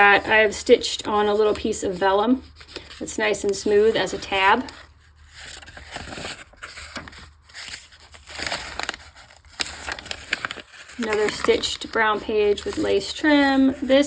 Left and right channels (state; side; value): identical; both; correlation 1.00